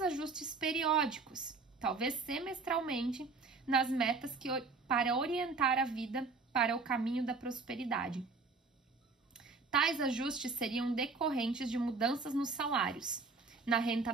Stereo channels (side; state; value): left; quieter; 4.1 dB